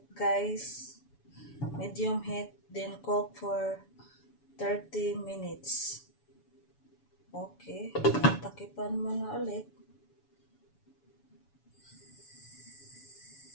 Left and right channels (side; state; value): right; late; 7.0 ms